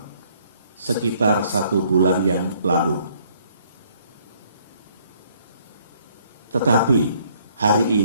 sekitar 1 bulan yang lalu. Tetapi hari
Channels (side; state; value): both; inverted; correlation -0.64